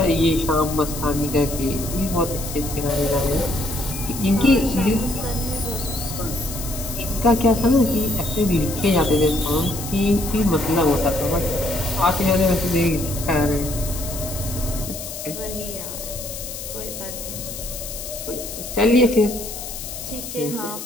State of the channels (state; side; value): noise; left; hiss, 9 dB below the sound